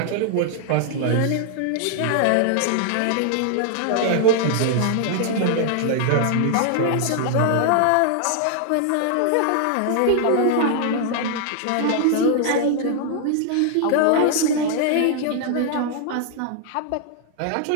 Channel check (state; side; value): different; both; correlation 0.00